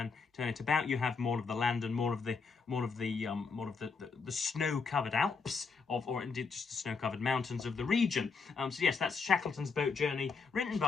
it about, you have more of the land and more of the snow-covered Alps or indeed just the snow-covered mountains of the region. So yes, that's Shackleton's Boat Journey, written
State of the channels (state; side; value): quieter; right; 5.0 dB